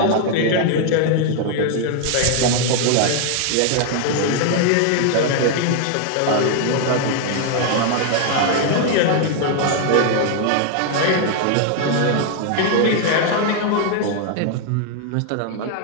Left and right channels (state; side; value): different; both; correlation 0.00